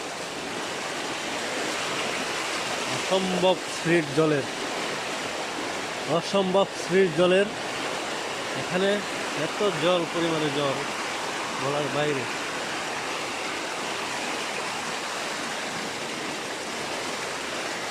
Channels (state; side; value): identical; both; correlation 1.00